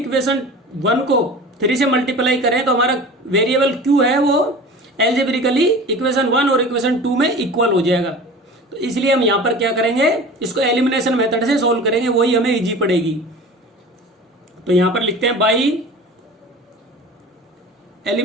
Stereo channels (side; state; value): both; normal; correlation 0.38